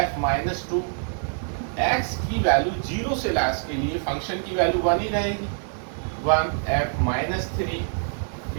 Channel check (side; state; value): left; silent; digital silence